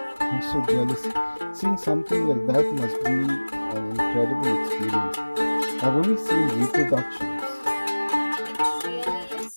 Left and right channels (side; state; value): both; inverted; correlation -1.00